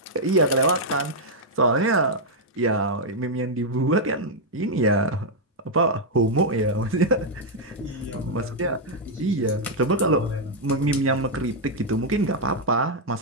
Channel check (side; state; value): both; normal; correlation -0.02